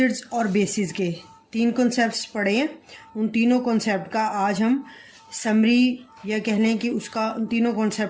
और बेसिस के 3 कॉन्सेप्ट्स पढ़े हैं। उन तीनों कॉन्सेप्ट का आज हम समरी या कह लें कि उसका उन तीनों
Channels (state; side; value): identical; both; correlation 1.00